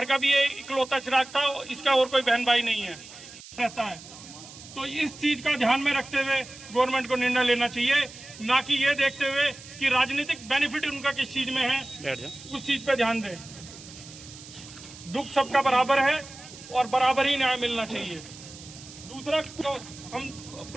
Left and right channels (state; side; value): noise; right; hiss, 17 dB below the sound